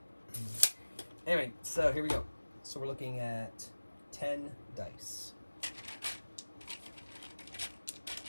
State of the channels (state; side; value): inverted; both; correlation -1.00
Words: Anyway, so here we go. So we're looking at 10 dice.